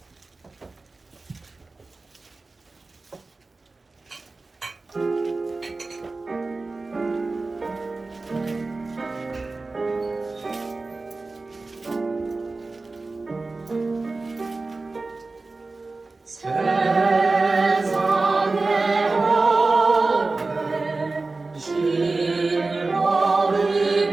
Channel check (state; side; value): quieter; left; 3.5 dB